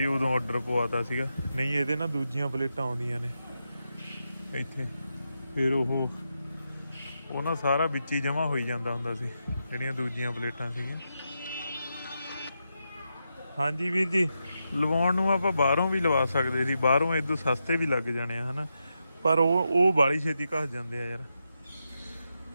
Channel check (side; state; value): both; inverted; correlation -0.86